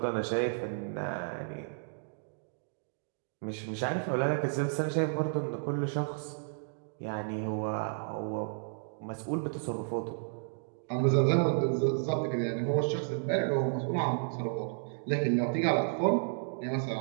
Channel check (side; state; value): left; silent; digital silence